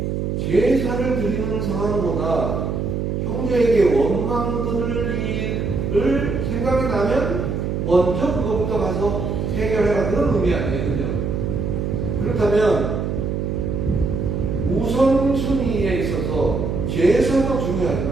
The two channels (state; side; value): noise; right; hum, 1 dB below the sound